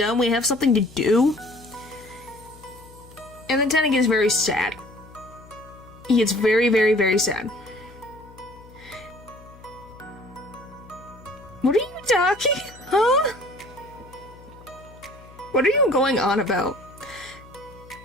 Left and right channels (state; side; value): noise; left; hum, 22 dB below the sound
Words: We have something to do. And then Tenna gets very sad. He gets very, very, very sad. What are you talking? Huh? What are you going on about?